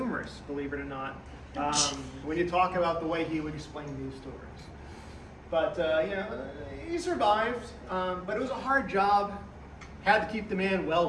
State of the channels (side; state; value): both; identical; correlation 1.00